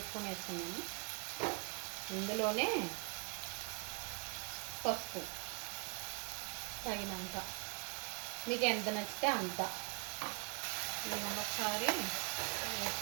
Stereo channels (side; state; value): left; quieter; 35.3 dB